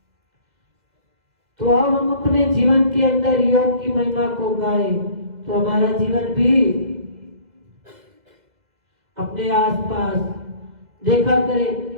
तो अब हम अपने जीवन के अंदर योग की महिमा को गाएं तो हमारा जीवन भी अपने आसपास देखा करे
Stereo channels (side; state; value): left; late; 2.0 ms